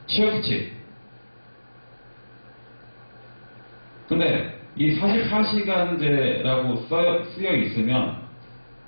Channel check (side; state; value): both; inverted; correlation -1.00